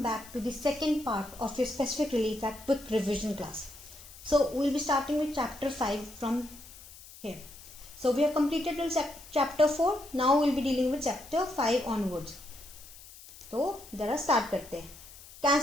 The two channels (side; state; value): left; noise; hiss, 18 dB below the sound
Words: back to the second part of your specific relief act quick revision class. So we'll be starting with chapter 5 from here. So we have completed till chapter 4. Now we'll be dealing with chapter 5 onwards. तो जरा start करते हैं.